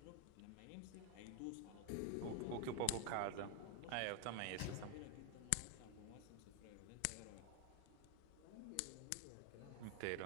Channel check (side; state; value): both; different; correlation 0.01